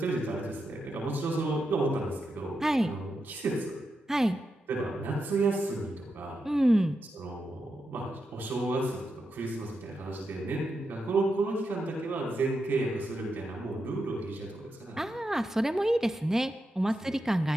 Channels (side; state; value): both; normal; correlation 0.86